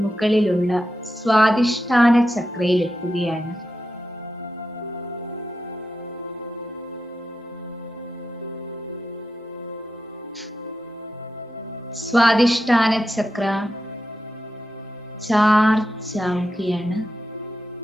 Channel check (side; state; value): both; normal; correlation 0.88